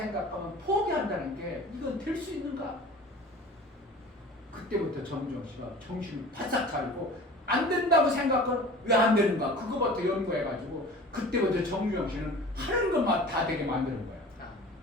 포기한다는 게 이건 될 수 있는가? 그때부터 정주영 씨가 정신을 바싹 차리고 안 된다고 생각하면 왜 안 되는가? 그거부터 연구해가지고 그때부터 정주영 씨는 하는 것만 다 되게 만드는 거야.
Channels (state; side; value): normal; both; correlation 0.41